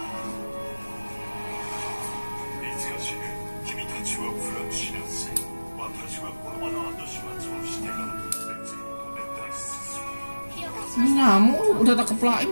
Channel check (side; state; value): both; inverted; correlation -1.00